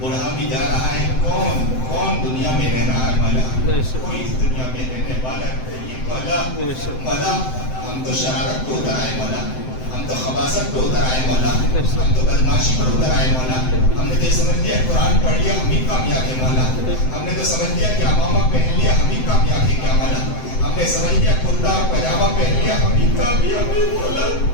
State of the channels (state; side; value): late; right; 7.8 ms